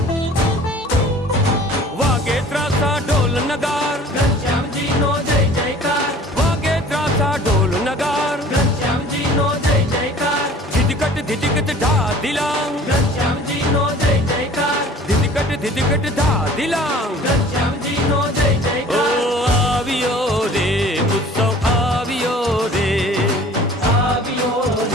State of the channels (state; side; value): normal; both; correlation 0.48